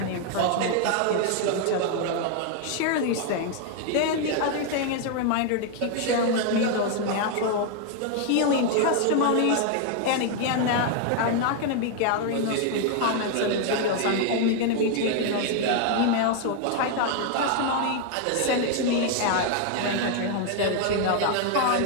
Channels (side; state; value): both; different; correlation 0.00